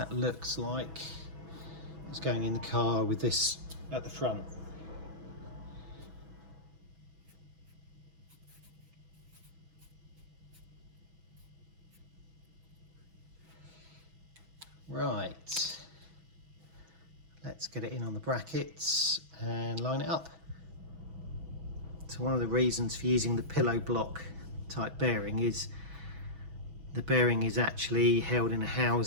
looks like it's going in the car with this at the front. Right, let's get it in on the brackets and line it up. So one of the reasons for using the pillow block type bearing is the bearing is actually held in a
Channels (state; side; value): late; left; 6.1 ms